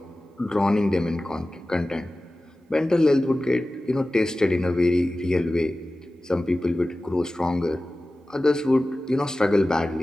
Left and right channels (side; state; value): both; normal; correlation 0.96